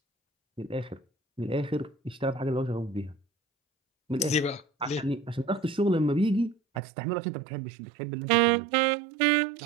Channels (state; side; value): drops out; left; at 6.8 s